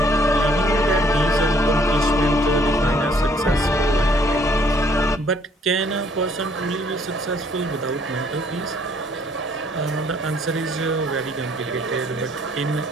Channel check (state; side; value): normal; both; correlation 0.63